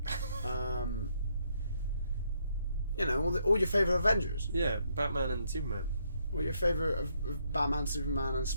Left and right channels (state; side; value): inverted; both; correlation -0.74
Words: You know, all your favourite Avengers. Yeah, Batman and Superman. All your favourite of Batman, Superman, and